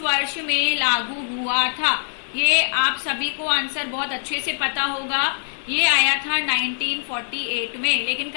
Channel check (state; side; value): silent; right; 64 dB below the other